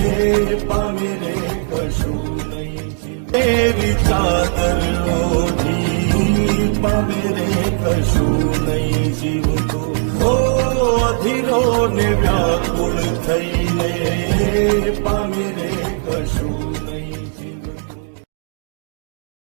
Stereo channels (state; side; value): silent; left; digital silence